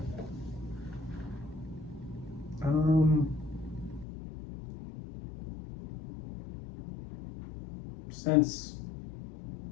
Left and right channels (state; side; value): drops out; right; at 4.0 s